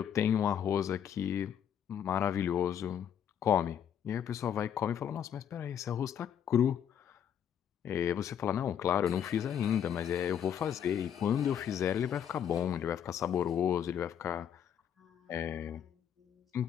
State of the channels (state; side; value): quieter; right; 9.0 dB